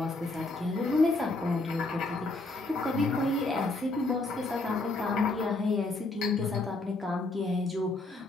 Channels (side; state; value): right; quieter; 3.1 dB